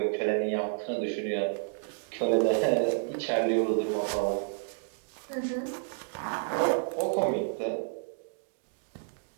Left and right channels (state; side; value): silent; left; digital silence